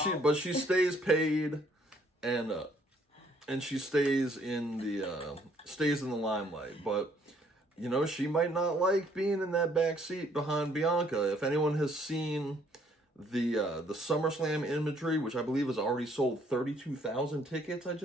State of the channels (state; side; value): normal; both; correlation 0.64